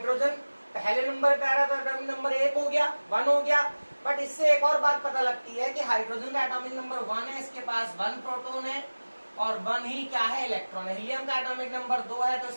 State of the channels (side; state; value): both; inverted; correlation -1.00